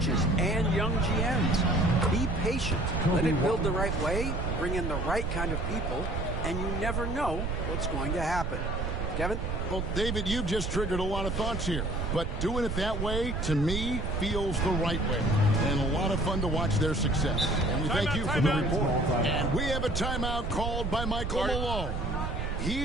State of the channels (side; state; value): right; noise; rumble, 2 dB below the sound